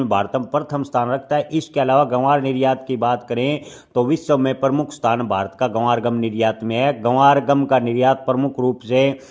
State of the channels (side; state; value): both; identical; correlation 1.00